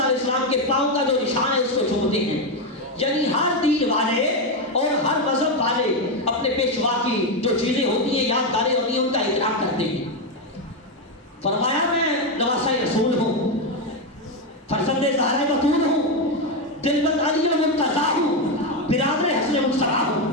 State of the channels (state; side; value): normal; both; correlation 0.08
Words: علیہ السلام کے پاؤں کا جو نشان ہے اس کو چومتے ہیں، یعنی ہر دین والے اور ہر مذہب والے اپنے پیشوا کی جو چیزیں ہوتی ہیں، یادگاریں ہوتی ہیں، ان کا احترام کرتے ہیں۔ فرمایا میں نواسہ رسول ہوں، فرزند زہرہ بتول ہوں، دلبند علی المرتضیٰ ہوں، برادر حسن مصطفیٰ